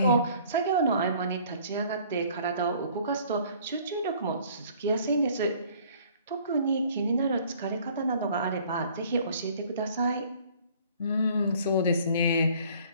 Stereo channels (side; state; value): both; inverted; correlation -0.55